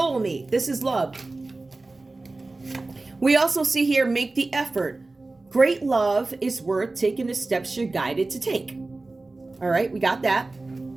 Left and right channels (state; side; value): quieter; left; 3.2 dB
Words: This is love. We also see here, make the effort. Great love is worth taking the steps you're guided to take. All right, we got that.